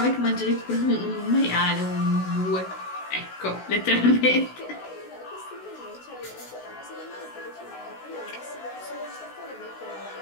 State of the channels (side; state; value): right; late; 16 ms